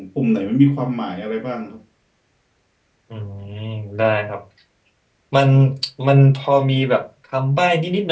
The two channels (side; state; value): both; identical; correlation 1.00